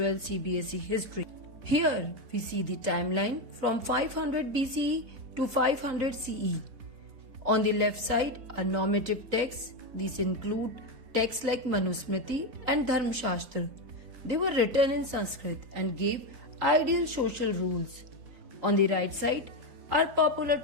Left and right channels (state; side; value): late; left; 3.9 ms